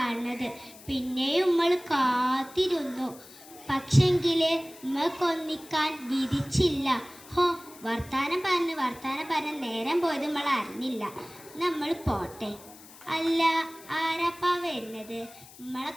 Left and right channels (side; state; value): left; noise; hiss, 20 dB below the sound